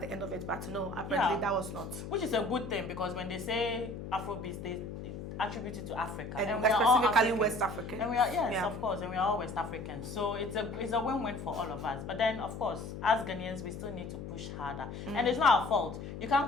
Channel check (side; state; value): left; noise; hum, 8 dB below the sound